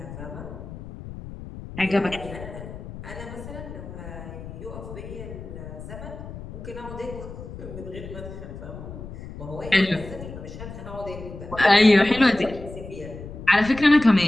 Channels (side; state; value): left; noise; rumble, 12 dB below the sound